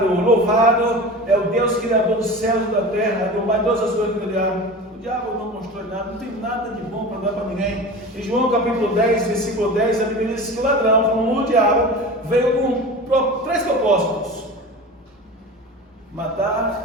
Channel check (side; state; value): both; normal; correlation 0.33